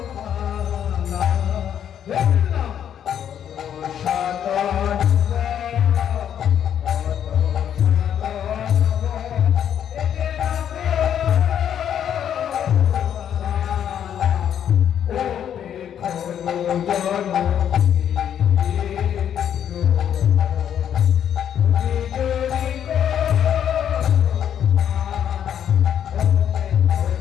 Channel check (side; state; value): right; quieter; 9.4 dB